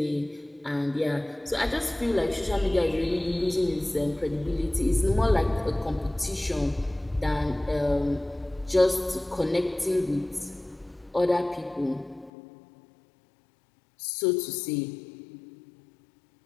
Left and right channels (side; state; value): right; drops out; at 12.3 s